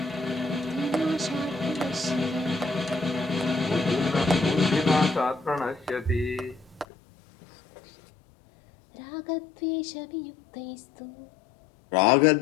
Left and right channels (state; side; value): drops out; right; at 6.9 s